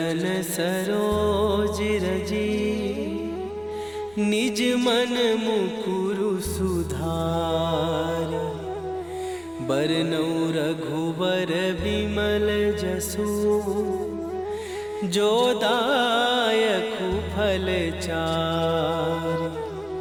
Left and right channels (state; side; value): noise; left; rumble, 28 dB below the sound